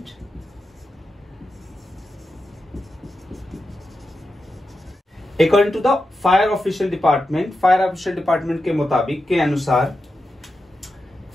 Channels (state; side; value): normal; both; correlation 0.90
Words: according to the fire official department के मुताबिक, के अनुसार,